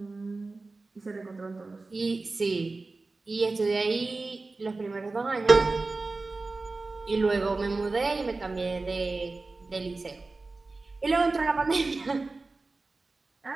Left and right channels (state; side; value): quieter; left; 3.5 dB